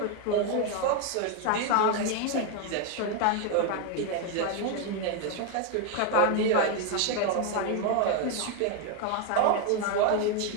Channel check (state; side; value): different; both; correlation 0.01